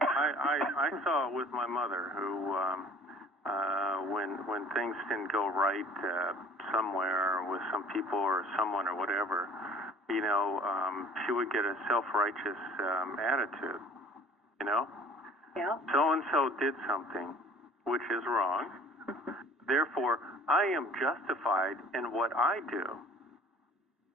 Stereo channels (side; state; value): both; normal; correlation 0.50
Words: I saw it with my mother, who, when things didn't go right somewhere with some people or someone or whatever, she would get a self-righteous attitude, Yeah. So-and-so did something, which is wrong. Therefore, I am justified in what I do.